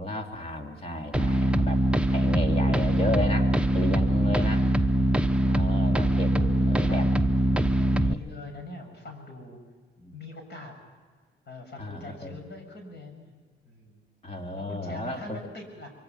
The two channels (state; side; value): normal; both; correlation 0.85